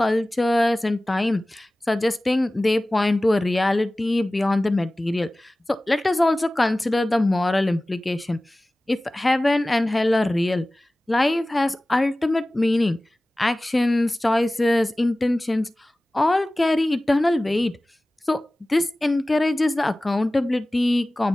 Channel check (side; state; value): both; normal; correlation 0.98